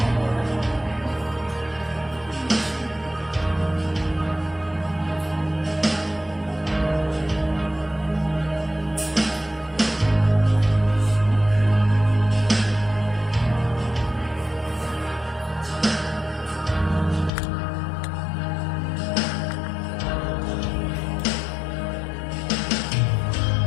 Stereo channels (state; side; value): drops out; right; at 17.3 s